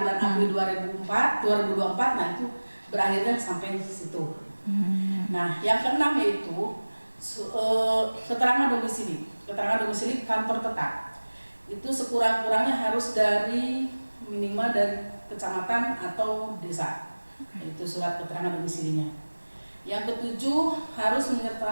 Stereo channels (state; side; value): inverted; both; correlation -1.00